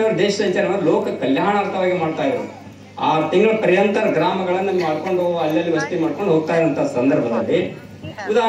ಅವರು ದೇಶ ಸಂಚಾರ ಲೋಕ ಕಲ್ಯಾಣಾರ್ಥವಾಗಿ ಮಾಡ್ತಾ ಇದ್ರು. 6 ತಿಂಗಳ ಪರ್ಯಂತ ಗ್ರಾಮಗಳನ್ನು ಮಾಡ್ಕೊಂಡು ಅಲ್ಲಲ್ಲಿ ವಸತಿ ಮಾಡ್ಕೊಂಡು ಹೋಗ್ತಾ ಇರೋಂಥ ಸಂದರ್ಭದಲ್ಲಿ,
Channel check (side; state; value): both; identical; correlation 1.00